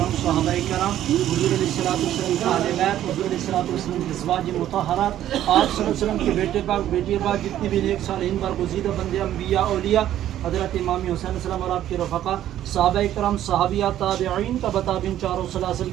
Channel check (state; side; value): quieter; left; 12.1 dB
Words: صحابہ کرام، حضور علیہ الصلوۃ والسلام کے اہل بیت، حضور علیہ الصلوۃ والسلام کی ازواج مطہرات، آپ صلی اللہ علیہ وسلم کے بیٹے پاک، بیٹی پاک، جتنے بھی نیک صالحین برگزیدہ بندے انبیاء اولیاء، حضرت امام حسین علیہ السلام اور آپ کے رفقا، صحابہ کرام، صحابیات، تابعین کا بتابعین، چاروں سلاسل